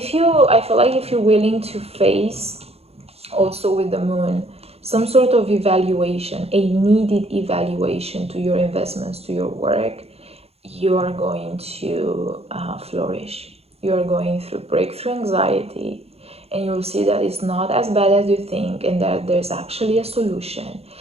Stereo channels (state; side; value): late; left; 0.29 ms